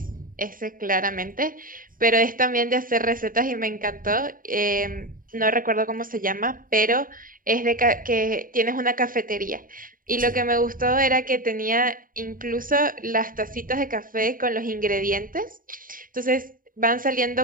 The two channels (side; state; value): left; late; 0.40 ms